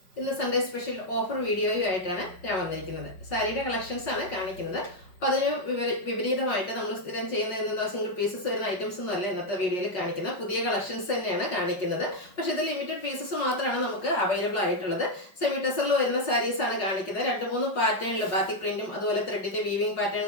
ഇന്ന് Sunday special offer വീഡിയോയുമായിട്ടാണ് ഞാൻ വന്നിരിക്കുന്നത്. സാരിയുടെ കളക്ഷൻസ് ആണ് കാണിക്കുന്നത്. അപ്പോൾ അതിന് വിപരീതമായിട്ട് നമ്മൾ സ്ഥിരം ചെയ്യുന്ന എന്താ സിംഗിൾ പീസസ് വരുന്ന ഐറ്റംസ് ഒന്നുമല്ല ഇന്നത്തെ വീഡിയോയിൽ കാണിക്കുന്നത്. പുതിയ കളക്ഷൻസ് തന്നെയാണ് കാണിക്കുന്നത്. പക്ഷേ ഇത് ലിമിറ്റഡ് പീസസ് മാത്രമാണ് നമുക്ക് അവൈലബിൾ ആയിട്ടുള്ളത്. സെമി ടെസറിൽ വരുന്ന സാരീസ് ആണ് കാണിക്കുന്നത്. 2-3 പാറ്റേണിൽ ബാത്തിക് പ്രിന്റും അതുപോലെ ത്രെഡിന്റെ വീവിംഗ് പാറ്റേൺ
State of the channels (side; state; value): right; late; 5.4 ms